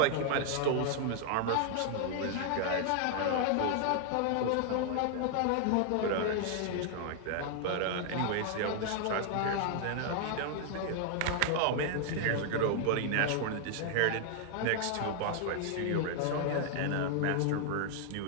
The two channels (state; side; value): different; both; correlation 0.00